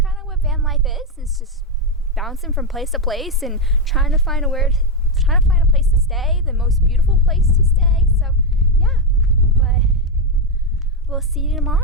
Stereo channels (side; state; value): both; normal; correlation 0.05